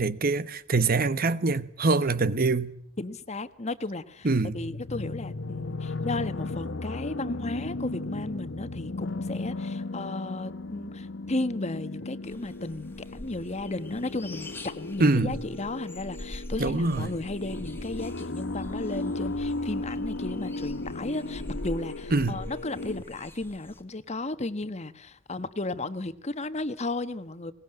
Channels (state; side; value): normal; both; correlation 0.48